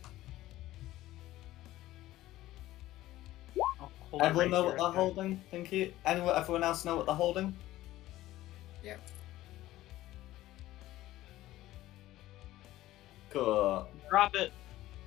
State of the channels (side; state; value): right; quieter; 15.6 dB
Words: I'll hold it Everyone right know here, what they're okay. holding? Thank you. Everyone else know what they're holding? Yep. Cool. Drop it.